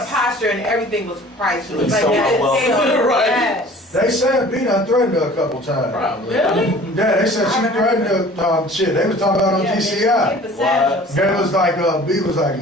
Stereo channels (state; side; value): normal; both; correlation 0.47